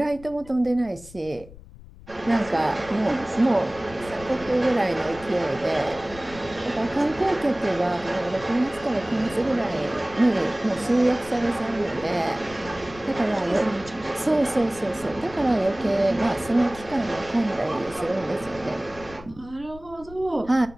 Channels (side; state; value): left; noise; rumble, 19 dB below the sound